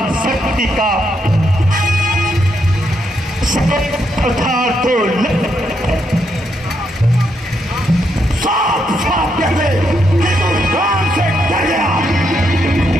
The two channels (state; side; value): normal; both; correlation 0.79